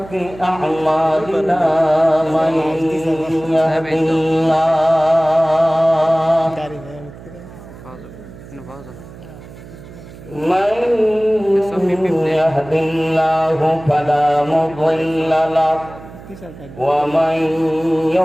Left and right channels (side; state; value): right; noise; hum, 17 dB below the sound